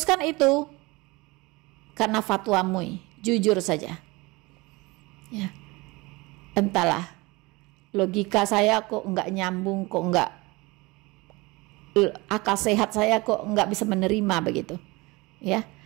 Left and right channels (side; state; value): left; quieter; 23.6 dB